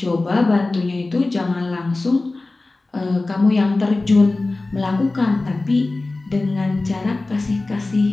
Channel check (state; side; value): quieter; right; 3.2 dB